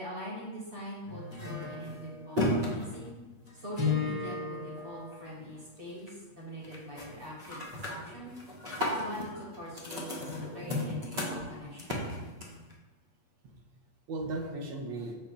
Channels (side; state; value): left; late; 8.4 ms